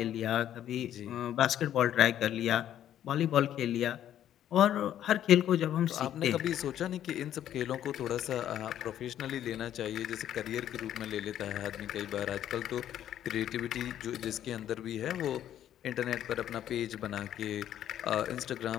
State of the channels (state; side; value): quieter; right; 11.1 dB